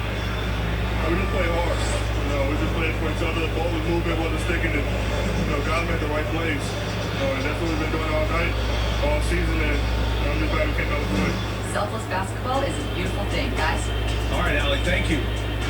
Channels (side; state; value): both; identical; correlation 1.00